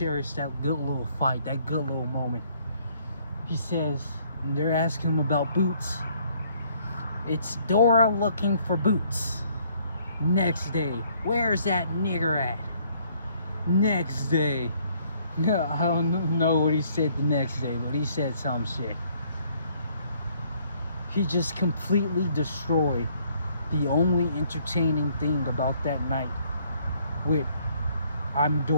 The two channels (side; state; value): both; inverted; correlation -0.64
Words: that good little fight, that good little moment. He says, they're asking him about boots. It's Dora looking for boots. Next day, where's that nigger at? Next day. No, I don't know what he said the next day, but he said some shit. He just completely destroyed the only entertaining thing about that night with I'm